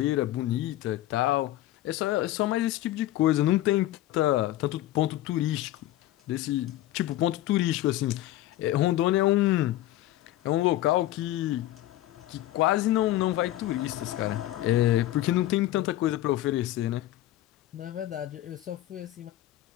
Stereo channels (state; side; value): quieter; right; 14.7 dB